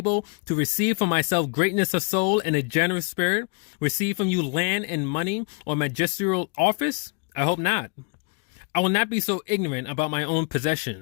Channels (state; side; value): quieter; right; 35.5 dB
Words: to receive from myself greatness of soul and a generous spirit, receive from you land and money or magisterial office? I hope not. I will not be so ignorant about my own